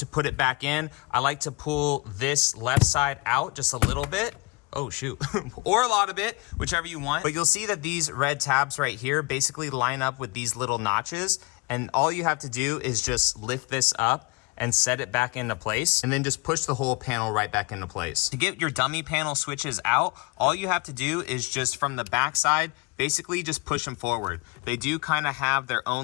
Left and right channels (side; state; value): right; quieter; 26.5 dB